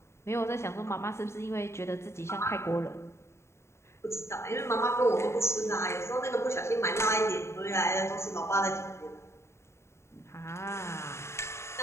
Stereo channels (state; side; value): late; right; 0.13 ms